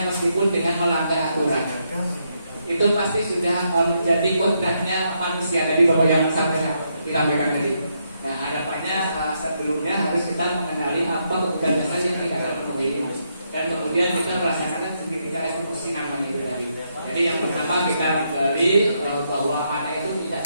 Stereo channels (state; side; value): inverted; both; correlation -0.78